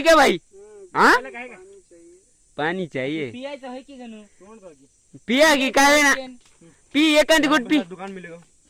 क्या भाई? हाँ पानी चाहिए। पाणी चाहिए. पियायचं आहे की गणू? तोंड बघ पिया की काय ना पी एखादी गुट पी. दुकान मिलेगा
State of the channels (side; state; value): both; identical; correlation 1.00